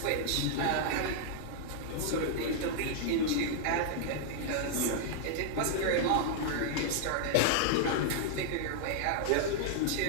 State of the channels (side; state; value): both; different; correlation -0.01